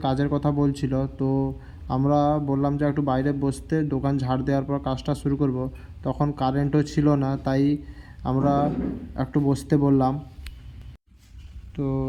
কাজের কথা বলছিল। তো আমরা বললাম যে একটু বাইরে বসতে, দোকান ঝাড় দেওয়ার পর কাজটা শুরু করব। তখন কারেন্টও ছিল না, তাই আমরা একটু বসতে বললাম। তো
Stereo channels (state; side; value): identical; both; correlation 1.00